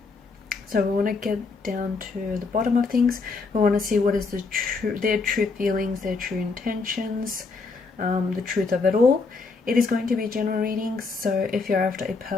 So we want to get down to the bottom of things. We want to see what is their true feelings, their true intentions, the truth of it all. It is going to be a general reading, so if you're after a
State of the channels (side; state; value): right; quieter; 4.2 dB